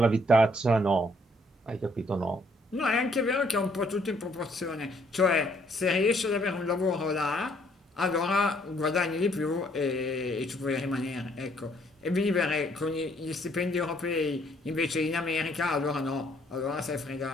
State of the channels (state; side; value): normal; both; correlation 0.66